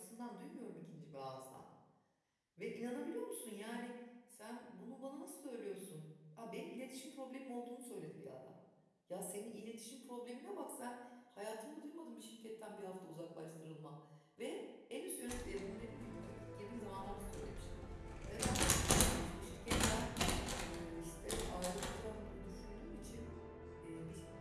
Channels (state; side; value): identical; both; correlation 1.00